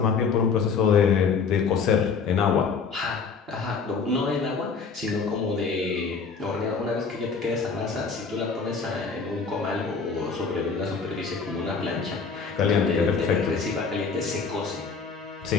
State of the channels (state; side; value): quieter; right; 5.3 dB